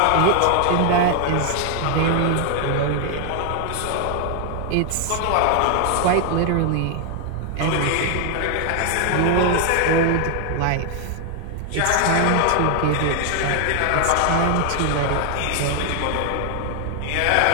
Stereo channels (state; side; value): different; both; correlation 0.00